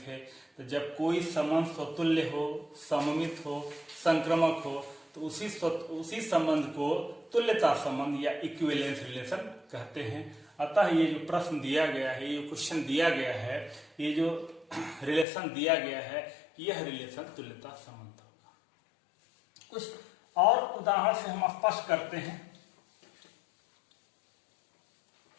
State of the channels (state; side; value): drops out; right; at 15.2 s